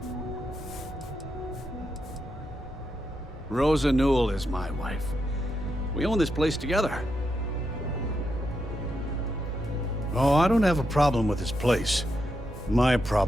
Rosa Newell is my wife. We own this place together. Oh, I don't have a problem with this place. My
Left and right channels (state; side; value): normal; both; correlation 0.83